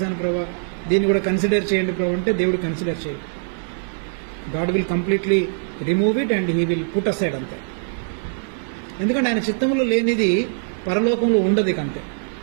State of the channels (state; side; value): silent; left; 64 dB below the other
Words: ప్రభా, దీన్ని కూడా కన్సిడర్ చేయండి ప్రభా అంటే దేవుడు కన్సిడర్ చేయడు. God will completely remove it and he will put aside అంతే. ఎందుకంటే ఆయన చిత్తంలో లేనిది పరలోకంలో ఉండదు అంతే.